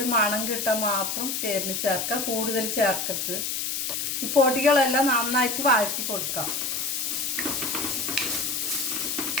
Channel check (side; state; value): left; noise; hiss, 1 dB below the sound